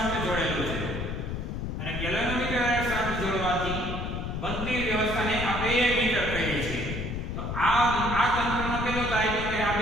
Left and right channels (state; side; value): noise; left; rumble, 4 dB below the sound